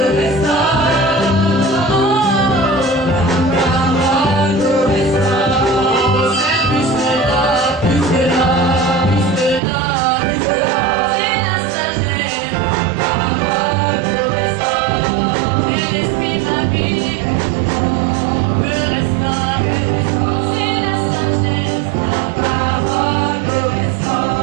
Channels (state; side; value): drops out; left; at 9.6 s